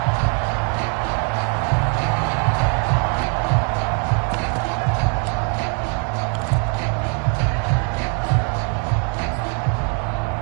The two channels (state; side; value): quieter; left; 39.5 dB